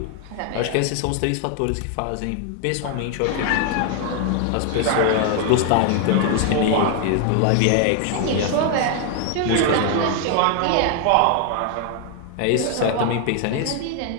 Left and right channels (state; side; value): different; both; correlation 0.00